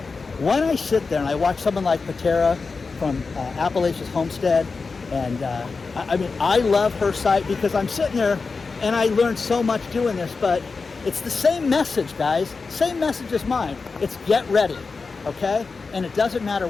when I sit there and I watch someone like Patera from Appalachias Homestead, and I love her site because I'm sitting there and I learned so much doing this, but it's the same message, guys. Same message as mine. It's get ready, okay? And it doesn't matter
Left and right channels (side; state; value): right; quieter; 4.4 dB